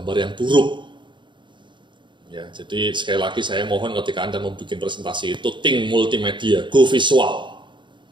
yang buruk. Ya, jadi sekali lagi saya mohon ketika Anda membuat presentasi itu think multimedia, go visual.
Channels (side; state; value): left; late; 0.23 ms